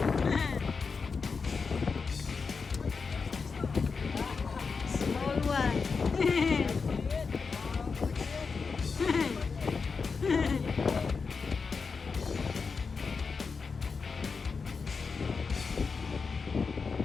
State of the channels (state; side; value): quieter; right; 5.0 dB